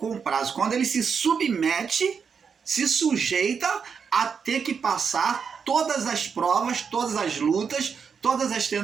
Quando ele se submete, se sujeita a ter que passar todas as provas, todas as lutas, todas as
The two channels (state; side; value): quieter; left; 6.3 dB